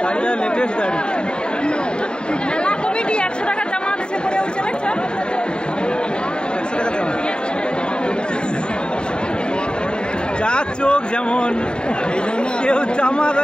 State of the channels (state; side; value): late; right; 0.050 ms